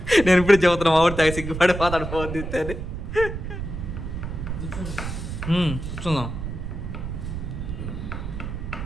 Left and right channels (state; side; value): noise; right; rumble, 6 dB below the sound